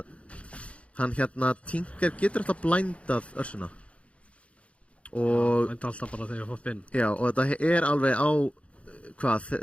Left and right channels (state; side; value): late; right; 0.062 ms